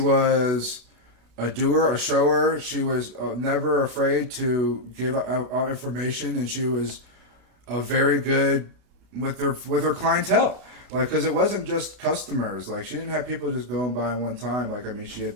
a doer, a shower. She was never afraid to give out information, and she was a very good with her clientele. Like, because it wasn't just customers. Like, she didn't have people just going by one time. Like, I mean, she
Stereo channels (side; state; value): left; late; 32 ms